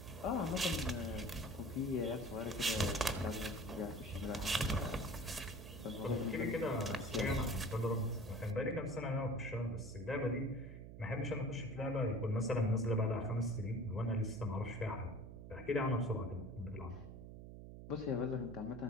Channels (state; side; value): noise; right; hum, 12 dB below the sound